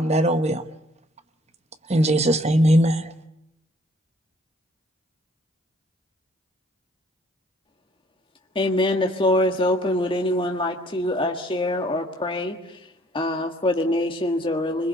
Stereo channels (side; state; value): both; normal; correlation 0.61